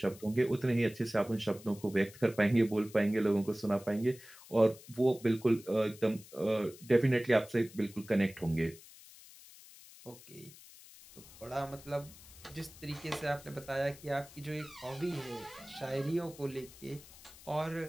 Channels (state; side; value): noise; left; hiss, 20 dB below the sound